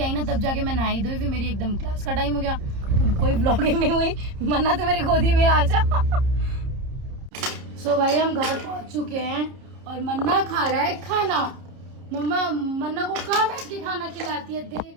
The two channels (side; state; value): left; late; 30 ms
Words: आई ना तब जाके मैं नहाई धोई, फिर मेरी एकदम क्लास का टाइम हो गया, तो कोई व्लॉगिंग नहीं हुई। मन्ना तो मेरी गोदी में आ जा। सो भाई हम घर पहुंच चुके हैं और मन्ना खा रहा है खाना। मम्मा मन्ना को कहाँ बैठ के खाना खिलाती है